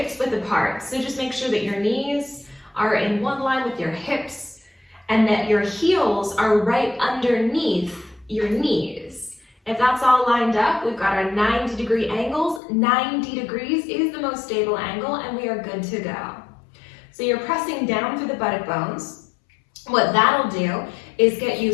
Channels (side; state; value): right; drops out; at 12.6 s